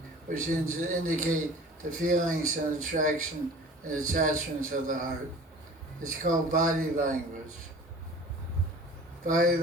which indicate the feelings and attraction and attachments of the heart. It's called body language. Body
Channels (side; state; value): both; normal; correlation 0.43